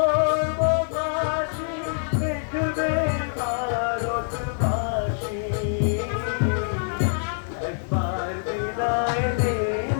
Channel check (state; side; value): silent; right; 60 dB below the other